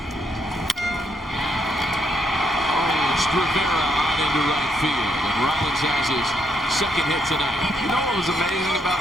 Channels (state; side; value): normal; both; correlation 0.76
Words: Rivera on into right field, and Rollins has his second hit tonight. You know what was amazing